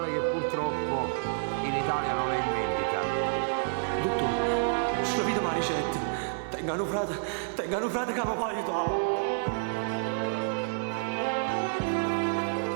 che purtroppo in Italia non è in vendita. Dottore, sta vita ma ricetta. Tengano frate che mi può aiutare.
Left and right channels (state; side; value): silent; left; 58 dB below the other